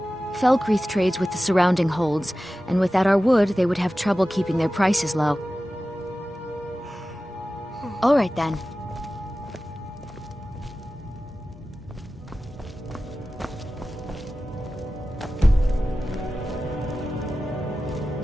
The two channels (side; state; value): both; normal; correlation 0.95